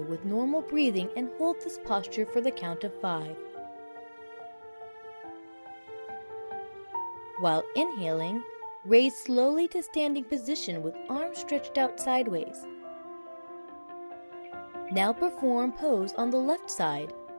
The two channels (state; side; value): inverted; both; correlation -1.00